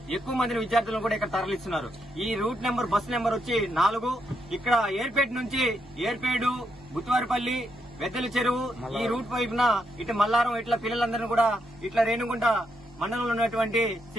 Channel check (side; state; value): both; normal; correlation 0.80